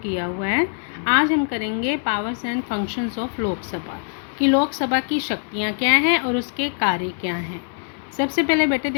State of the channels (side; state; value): right; silent; digital silence